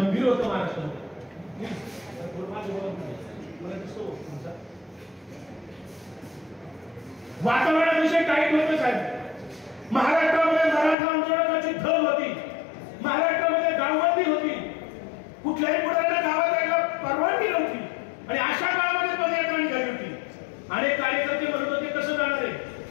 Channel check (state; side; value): drops out; right; at 11.0 s